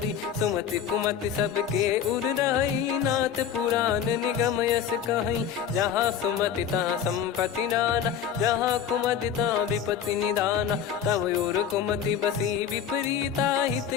सुमति कुमति सबके उर रही नाथ पुराण निगम यस कहीं जहाँ सुमति तहाँ संपत्ति नाना जहाँ कुमति तहाँ विपत्ति निदाना तव और कुमति बसी विपरीता हित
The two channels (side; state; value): right; quieter; 8.5 dB